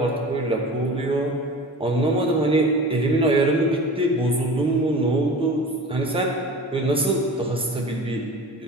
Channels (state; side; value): normal; both; correlation 0.37